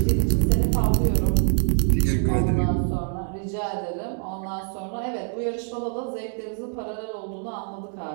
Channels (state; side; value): silent; left; 56 dB below the other